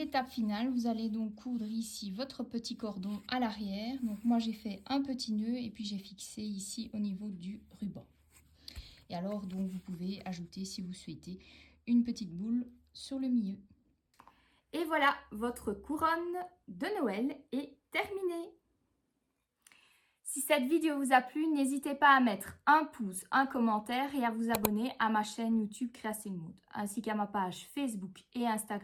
finale, vous allez donc coudre ici votre petit cordon à l'arrière. Donc moi j'ai fait un petit nœud et puis j'ai fixé ici au niveau du ruban. Et alors donc vous pouvez ajouter si vous souhaitez une petite boule sur le milieu. Et voilà, votre couronne de Noël est terminée. Si cette vidéo vous a plu, n'hésitez pas à mettre un pouce, un commentaire et à vous abonner à ma chaîne YouTube Creating Mode, ainsi qu'à ma page Facebook et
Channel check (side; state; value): both; identical; correlation 1.00